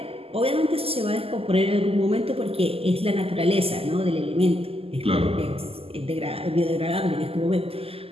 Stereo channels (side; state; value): left; late; 0.28 ms